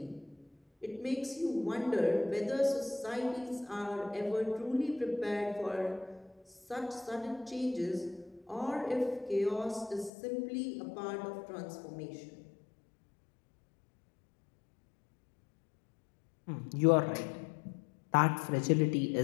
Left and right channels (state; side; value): drops out; right; at 10.1 s